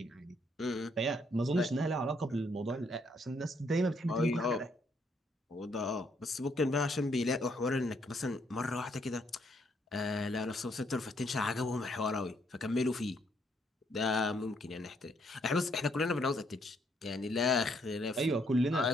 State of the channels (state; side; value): normal; both; correlation 0.71